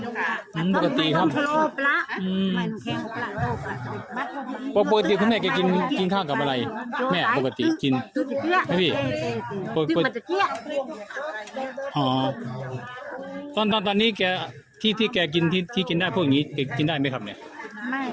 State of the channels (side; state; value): both; identical; correlation 1.00